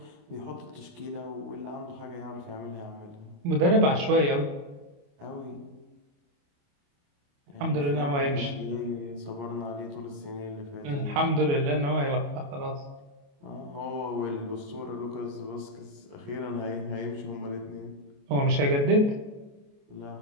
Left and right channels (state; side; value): late; left; 28 ms